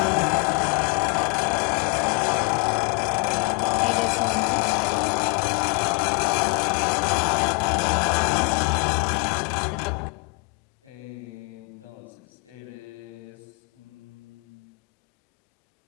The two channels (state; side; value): quieter; right; 33.0 dB